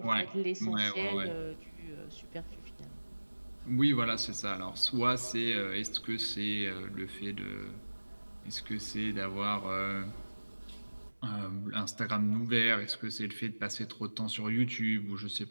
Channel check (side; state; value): both; inverted; correlation -1.00